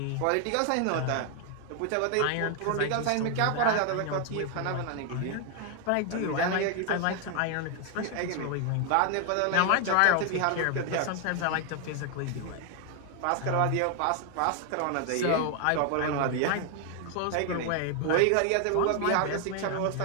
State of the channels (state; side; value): different; both; correlation 0.00